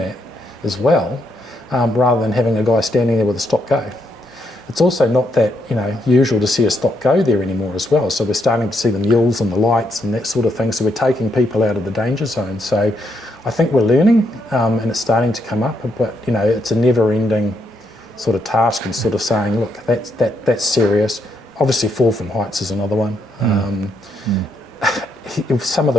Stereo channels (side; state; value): both; normal; correlation 0.77